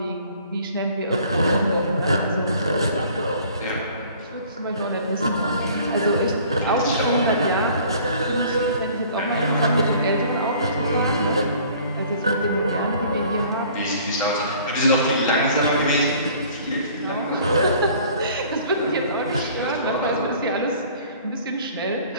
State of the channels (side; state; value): both; inverted; correlation -0.52